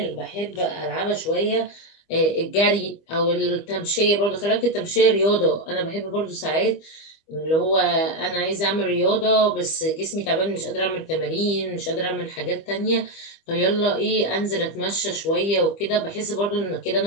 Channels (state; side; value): late; right; 25 ms